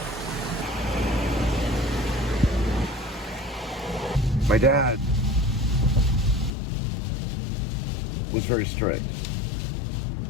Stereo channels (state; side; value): drops out; right; at 6.5 s